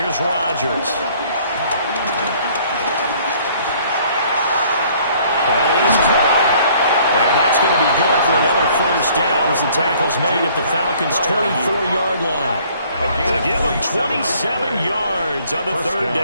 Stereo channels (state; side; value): inverted; both; correlation -0.58